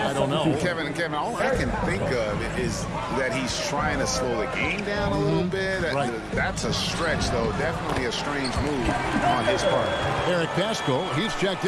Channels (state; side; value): identical; both; correlation 1.00